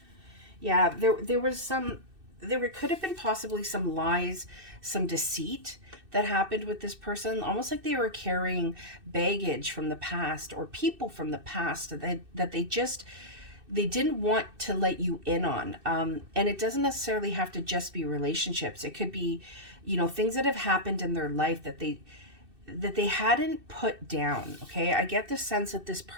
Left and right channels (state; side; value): late; left; 2.6 ms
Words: Yeah, there could have been possibly some lies, some deceit that happened with this person. Almost like they were carrying baggage from the past, or people from the past that they didn't want to let you in on. And it doesn't necessarily have to just be relationships. It could be, you know, things that have happened in their life that they hadn't put down. Okay. I get the sense that this